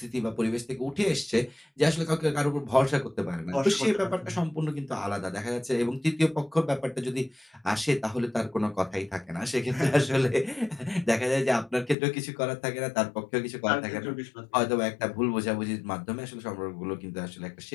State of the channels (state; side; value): drops out; right; at 12.0 s